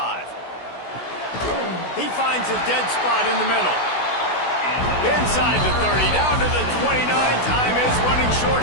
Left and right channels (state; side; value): late; right; 16 ms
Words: He finds a dead spot in the middle. Inside the 30, down to the 29. Time is running short